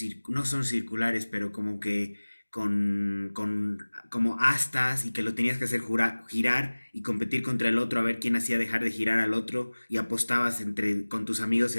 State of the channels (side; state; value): both; inverted; correlation -1.00